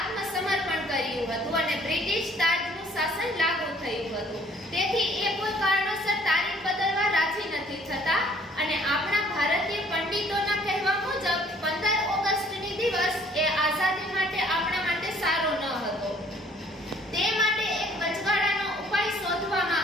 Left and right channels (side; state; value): both; normal; correlation 0.58